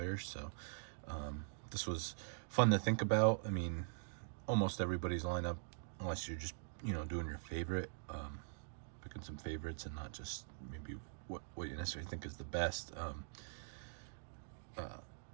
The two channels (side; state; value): left; silent; digital silence